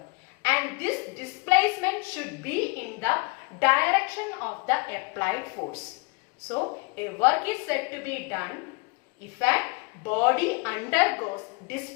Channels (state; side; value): quieter; right; 28.5 dB